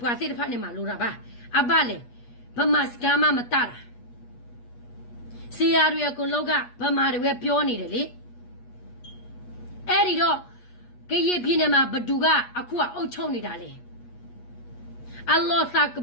ွားစေဖာနေမလို့တာပါအဘလေဗမစကမမတတာစီယာရကိုလောကဗမာတွေပြောနေတယ်လေအဲ့ဒီတော့ကရေပြင်းနေမှာဘဒူကအခုကအုတ်ချုံနေတာလေအလ္လာဟ်စက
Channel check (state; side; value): late; right; 8.3 ms